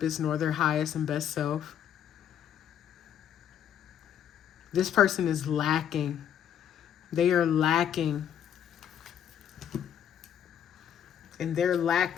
nor their highest and best self. This person is lacking. They are lacking. And their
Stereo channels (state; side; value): quieter; right; 9.5 dB